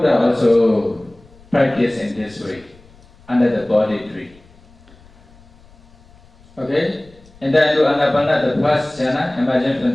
also practiced in this way, under the body tree. And then to Ānāpāna, the first jhana, imagine from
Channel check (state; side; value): noise; left; rumble, 27 dB below the sound